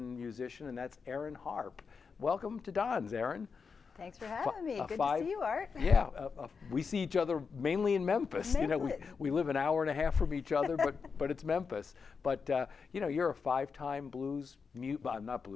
musician, and that's Erin Harpe. Welcome to Don's, Erin. Thanks for having me. Good to see you, Art. Yeah, we see each other mainly in Memphis. You know, we live an hour and a half from each other, but it's Memphis. But you know, you're a five-time Boston.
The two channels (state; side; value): quieter; right; 5.4 dB